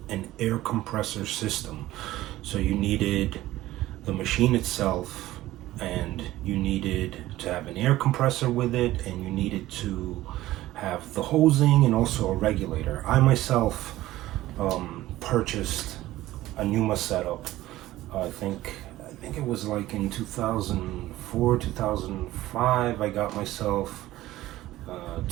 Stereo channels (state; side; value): quieter; left; 15.9 dB